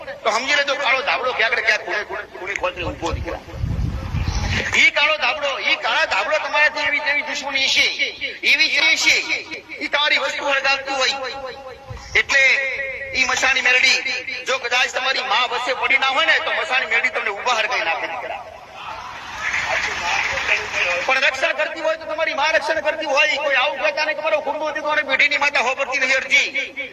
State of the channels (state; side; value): identical; both; correlation 1.00